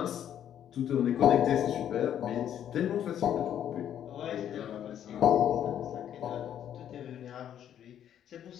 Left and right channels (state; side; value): quieter; right; 10.1 dB